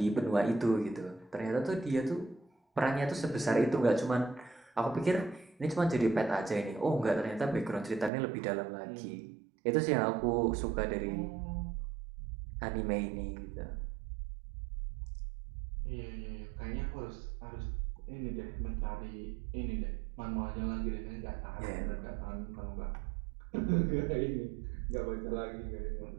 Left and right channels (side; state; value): left; drops out; at 8.1 s